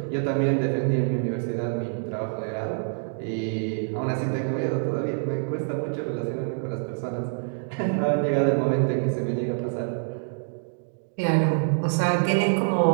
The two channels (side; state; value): left; silent; digital silence